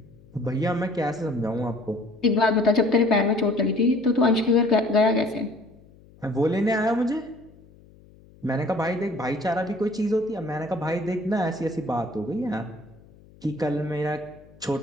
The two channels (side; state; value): left; noise; hum, 25 dB below the sound